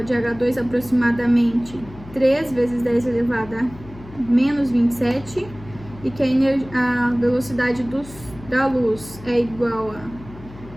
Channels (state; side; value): noise; left; hum, 18 dB below the sound